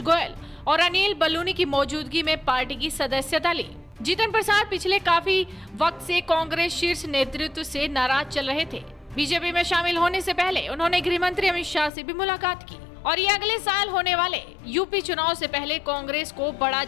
गोयल और अनिल बलूनी की मौजूदगी में पार्टी की सदस्यता ली। जीतन प्रसाद पिछले काफी वक्त से कांग्रेस शीर्ष नेतृत्व से नाराज चल रहे थे। बीजेपी में शामिल होने से पहले उन्होंने गृह मंत्री अमित शाह से भी मुलाकात की और ये अगले साल होने वाले यूपी चुनाव से पहले कांग्रेस को बड़ा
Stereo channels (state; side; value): drops out; right; at 11.9 s